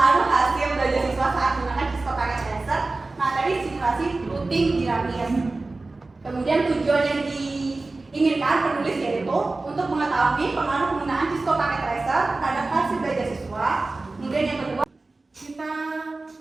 hasil belajar siswa saat menggunakan Cisco Packet Tracer, materi simulasi routing dinamis. Kemudian tujuan yang diinginkan penulis yaitu untuk mengetahui pengaruh penggunaan Cisco Packet Tracer terhadap hasil belajar siswa. Kemudian yang kedua, Kita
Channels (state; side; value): quieter; left; 3.3 dB